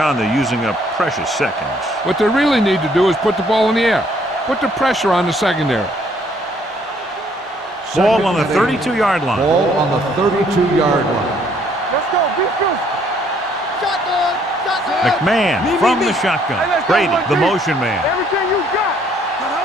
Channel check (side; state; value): both; normal; correlation 0.65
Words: they're using up precious seconds. What they really need to do is put the ball in the air. Put the pressure on the secondary. Ball on the 32-yard line. Ball on the 32-yard line. Let's go. Defense. Shotgun. McMahon from the shotgun. Brady, the motion man. Everything you got.